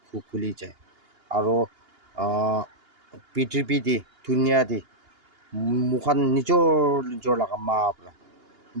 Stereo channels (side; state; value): left; late; 2.8 ms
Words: খুলি যায় আৰু পৃথিৱী দি ধুনীয়া দি মোকান নিজৰ লগা মা পৰা